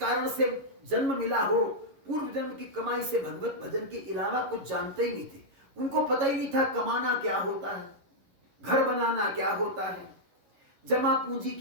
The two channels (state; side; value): late; left; 11 ms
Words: से जन्म मिला हो, पूर्व जन्म की कमाई से भगवत भजन के अलावा कुछ जानते ही नहीं थे। उनको पता ही नहीं था कमाना क्या होता है, घर बनाना क्या होता है, जमा पूंजी